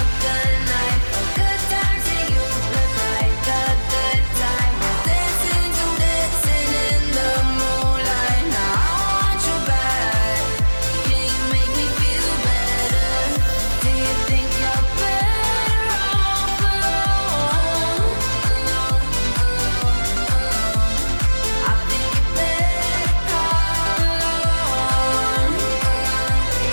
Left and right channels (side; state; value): both; inverted; correlation -1.00